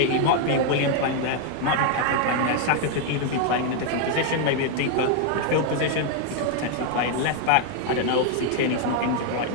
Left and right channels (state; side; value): different; both; correlation 0.01